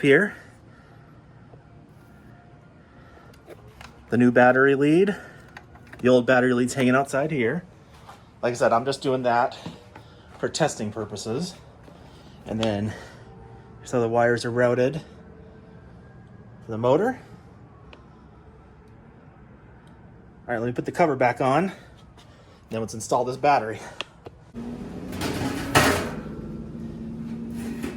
here. The new battery lead. The old battery lead's hanging outside here. Like I said, I'm just doing that for testing purposes. And then, so the wires are routed for the motor. All right, let me put the cover back on. Then let's install this battery.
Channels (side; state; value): both; identical; correlation 1.00